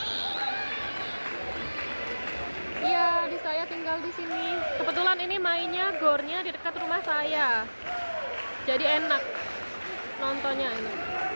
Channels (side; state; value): both; inverted; correlation -1.00